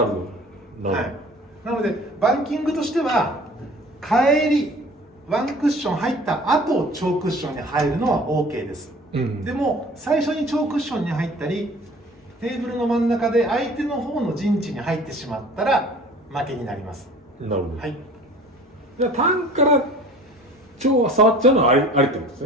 るほど。はい。なのでバンキングとしては帰りワンクッション入った後超クッションに入るのは OK です、でも最初に超クッションに入ったりテーブルの真ん中で相手の方の陣地に入ってしまったら負けになります。なるほど。はい。じゃあ単から超は触っちゃうのはありってことです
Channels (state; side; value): normal; both; correlation 0.46